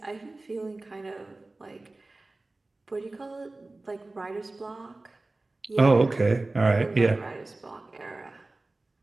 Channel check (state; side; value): quieter; left; 3.1 dB